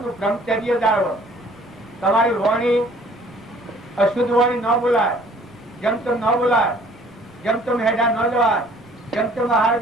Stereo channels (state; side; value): normal; both; correlation 0.56